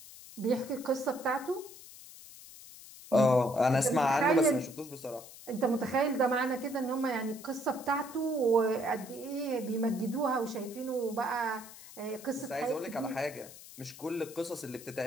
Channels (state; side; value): noise; left; hiss, 17 dB below the sound